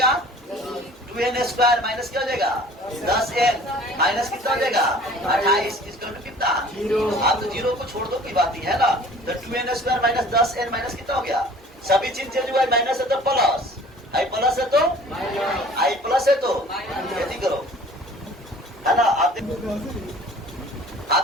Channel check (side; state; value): both; normal; correlation 0.49